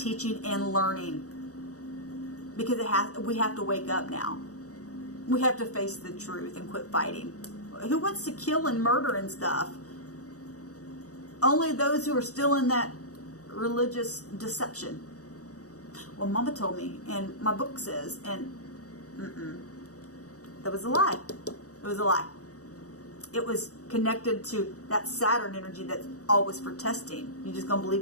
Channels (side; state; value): right; late; 0.66 ms